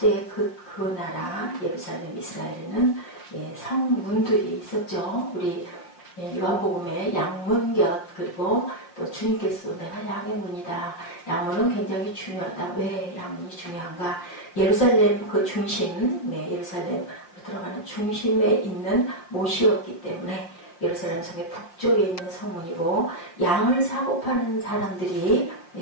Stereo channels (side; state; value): right; late; 5.8 ms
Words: 그 나라 예루살렘 이스라엘에는 성문들이 있었죠. 우리 요한복음의 양문곁, 그리고 또 주님께서 내가 양의 문이다. 양문은 굉장히 중요하다. 왜 양문이 중요한가? 예루살렘 그 중심, 예루살렘으로 들어가는 중심에 있는 못이었기 때문에 예루살렘 성의 북쪽에 있는 성문이고, 양을 사고 파는 사람들이